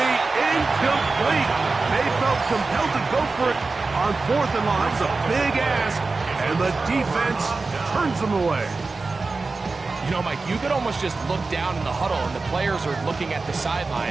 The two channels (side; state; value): left; quieter; 3.8 dB